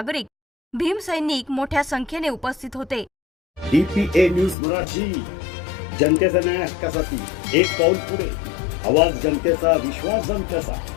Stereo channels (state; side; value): drops out; right; at 4.5 s